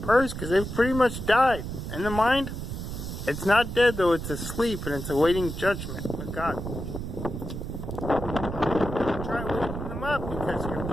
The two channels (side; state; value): right; noise; rumble, 6 dB below the sound